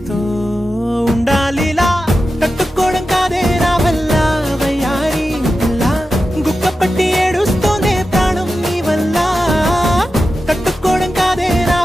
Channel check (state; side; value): normal; both; correlation 0.92